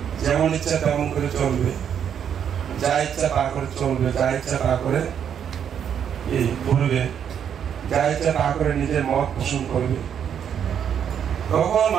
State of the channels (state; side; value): quieter; left; 8.5 dB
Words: যেমন ইচ্ছা তেমন করে চলবে, যা ইচ্ছা তা করে চলবে, যা ইচ্ছা তা করে এই করবে, যা ইচ্ছা তা করে নিজের মত পোষণ করবে, তখন